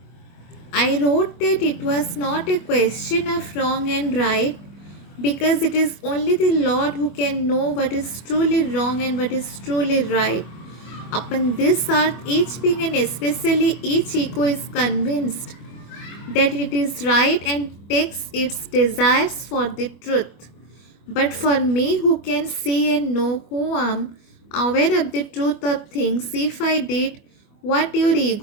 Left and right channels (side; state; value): right; late; 25 ms